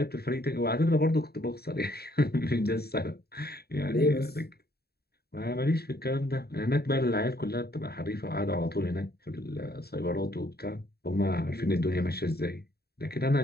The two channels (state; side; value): late; right; 0.46 ms